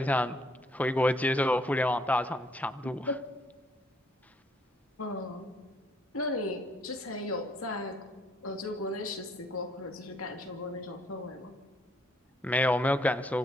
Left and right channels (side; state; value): both; normal; correlation 0.67